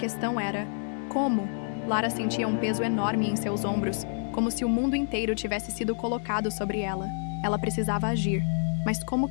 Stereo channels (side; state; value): right; silent; 55 dB below the other